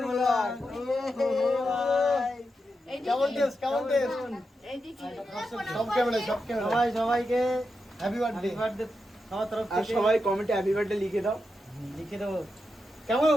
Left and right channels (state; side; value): normal; both; correlation 0.87